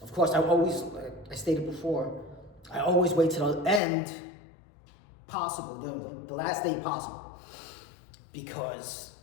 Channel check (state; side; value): drops out; right; at 3.8 s